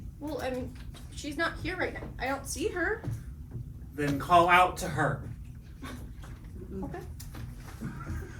Well, I mean, she's not here right now. I don't see her. Then call out to her. Okay.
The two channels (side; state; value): both; identical; correlation 1.00